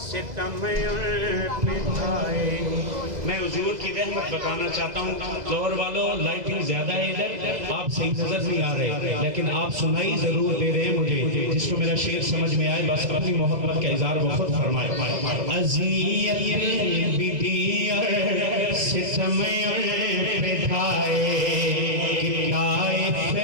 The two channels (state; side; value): late; left; 2.0 ms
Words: पे ढाए। मैं हुजूर की रहमत बताना चाहता हूँ। लाहौर वालों लाइटिंग ज्यादा है इधर, आप सही नजर नहीं आ रहे, लेकिन आप सुनाई जरूर दे रहे हैं मुझे। जिसको मेरा शेर समझ में आए बस अपनी मोहब्बत का इज़हार वो खुद फरमाए। अज़ियत विधि और सितम पे ढाए, किताए